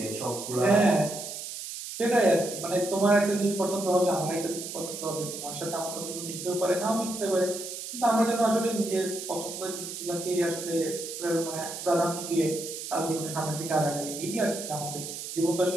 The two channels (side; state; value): right; noise; hiss, 8 dB below the sound